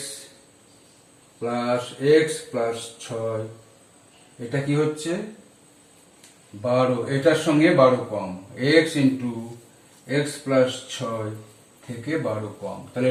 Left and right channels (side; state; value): both; identical; correlation 1.00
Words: প্লাস x প্লাস 6, এটা কি হচ্ছে? 12, এটার সঙ্গে 12 কম। x ইন্টু এক্স প্লাস 6 থেকে 12 কম, তাহলে